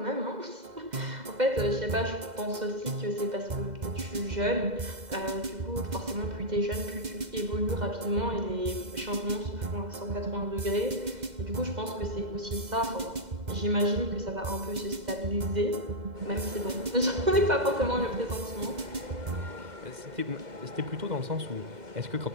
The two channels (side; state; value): left; late; 2.0 ms